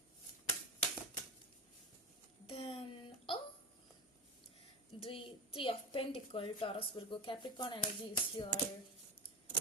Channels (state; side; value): normal; both; correlation 0.23